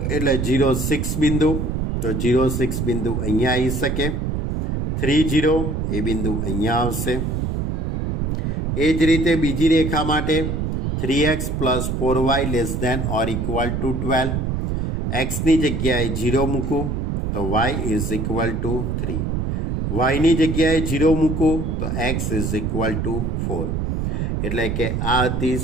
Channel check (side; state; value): right; noise; rumble, 1 dB below the sound